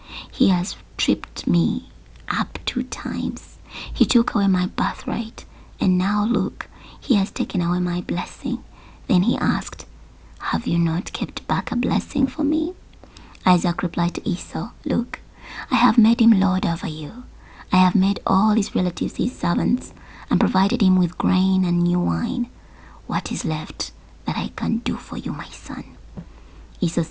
He has tripped me up 2 times. He took away my birthright, and now look, he has taken away my blessing." Then he asked, "Have you not kept back a blessing for me?" Isaac replied to Esau, "Look, I have made him lord over you. I have made all his relatives his servants and provided him with grain and new wine. What is left that I can do for you, my son?" Esau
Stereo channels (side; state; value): both; identical; correlation 1.00